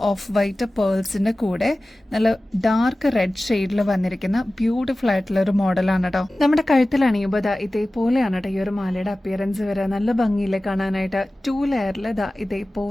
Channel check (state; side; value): normal; both; correlation 0.96